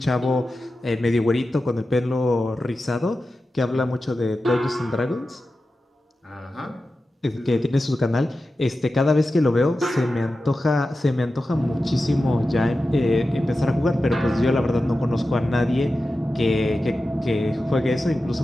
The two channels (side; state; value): both; normal; correlation 0.93